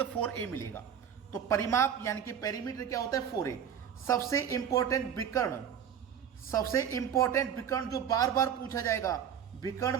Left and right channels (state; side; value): quieter; left; 8.5 dB